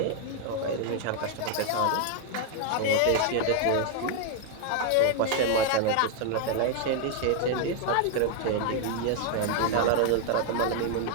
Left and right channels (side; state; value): both; different; correlation 0.00